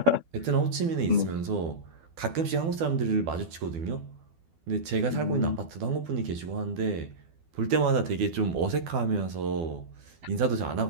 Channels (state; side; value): late; left; 12 ms